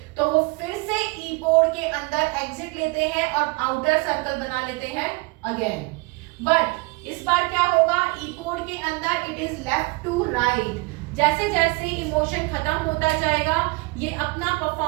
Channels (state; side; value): quieter; left; 26.0 dB